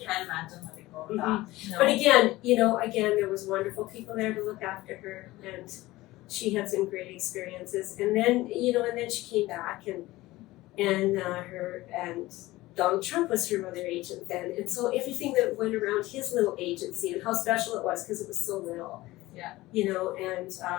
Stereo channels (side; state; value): right; quieter; 18.4 dB